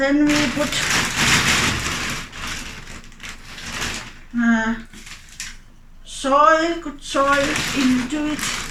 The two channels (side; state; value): both; identical; correlation 1.00